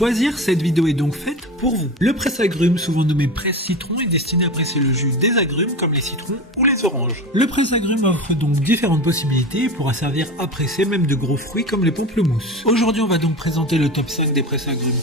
cette vidéo est donc faite pour vous. Le presse-agrumes, souvent nommé presse-citron, est destiné à presser le jus des agrumes comme les citrons ou les oranges. Le presse-agrumes offre donc différentes possibilités et pourra servir à presser même de gros fruits comme les pamplemousses. Aujourd'hui on va donc présenter le top 5 des presse-agrumes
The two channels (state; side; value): normal; both; correlation 0.28